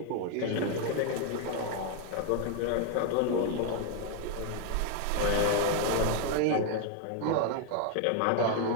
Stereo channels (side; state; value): both; different; correlation 0.00